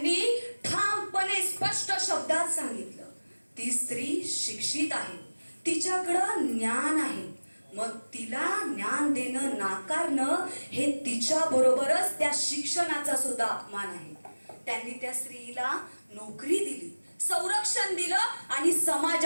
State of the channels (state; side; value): inverted; both; correlation -1.00